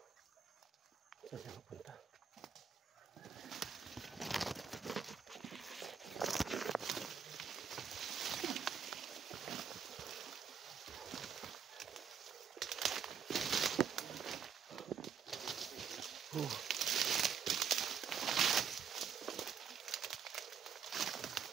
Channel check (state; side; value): quieter; left; 7.1 dB